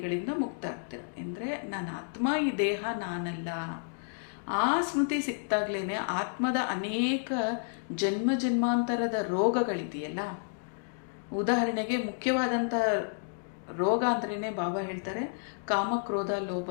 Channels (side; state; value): right; silent; digital silence